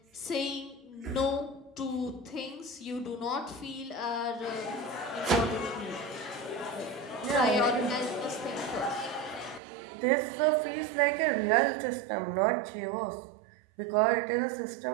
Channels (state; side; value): drops out; left; at 9.6 s